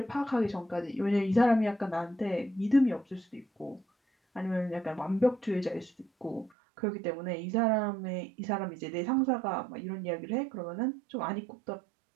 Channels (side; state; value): left; drops out; at 6.5 s